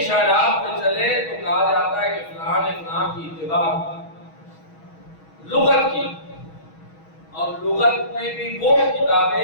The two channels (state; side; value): late; right; 6.3 ms